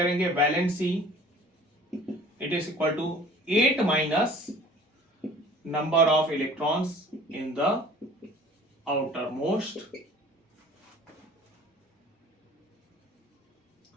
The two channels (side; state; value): both; normal; correlation 0.47